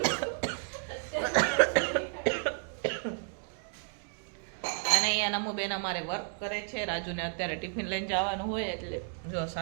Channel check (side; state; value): left; silent; 56 dB below the other